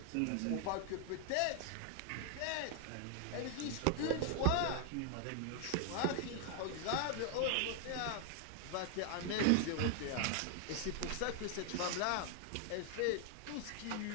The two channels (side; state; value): both; different; correlation 0.00